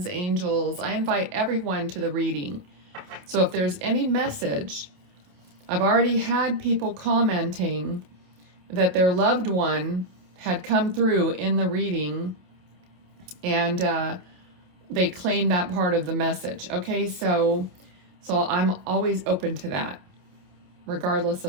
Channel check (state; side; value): late; left; 27 ms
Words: angels. I invite everyone to the reading. So if there's any message, I've already had people commenting that their loved one had come through in the reading, and they claim that part of the message. Okay, so I'm always open to that, regardless